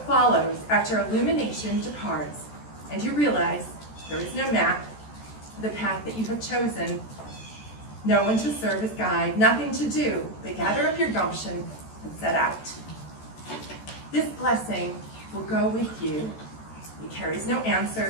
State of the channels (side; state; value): right; late; 14 ms